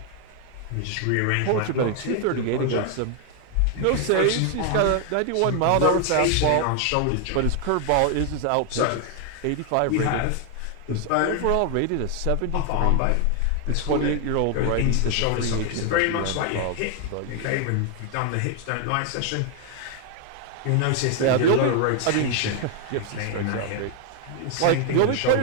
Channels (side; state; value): both; different; correlation 0.00